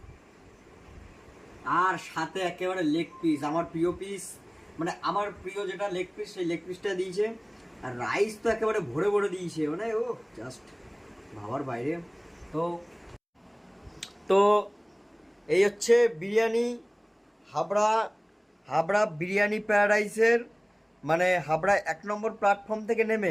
আর সাথে একেবারে লেগ পিস, আমার প্রিয় পিস, মানে আমার প্রিয় যেটা লেগ পিস, সেই লেগ পিসটা দিয়েছে। আর রাইস তো একেবারে ভরে ভরে দিয়েছে, মানে ও জাস্ট ভাবার বাইরে। তো তো এই হচ্ছে বিরিয়ানি, হাবড়া, হাবড়া বিরিয়ানি প্যারাডাইসের, মানে হাবড়া 1 নম্বর প্ল্যাটফর্ম থেকে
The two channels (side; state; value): both; identical; correlation 1.00